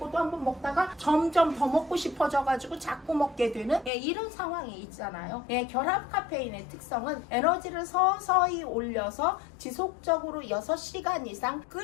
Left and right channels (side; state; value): right; drops out; at 3.9 s